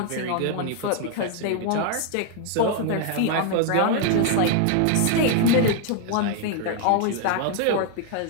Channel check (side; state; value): both; different; correlation 0.00